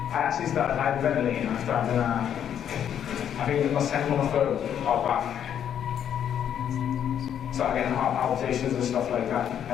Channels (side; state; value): right; quieter; 9.3 dB